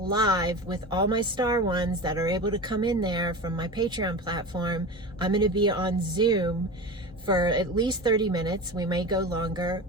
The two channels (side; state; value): both; normal; correlation 0.30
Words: with all my star ones that are able to come in there from my Patreon platform. I'm going to be on Zoom for at least 30 minutes. We may go longer,